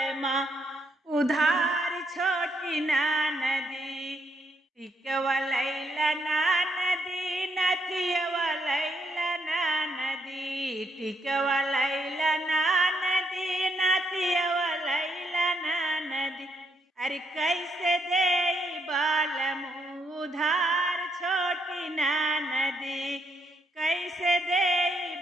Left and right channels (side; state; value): both; normal; correlation 0.75